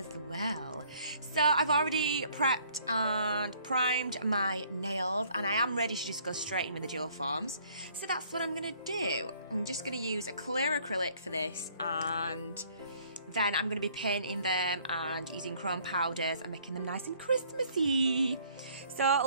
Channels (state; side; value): inverted; both; correlation -0.60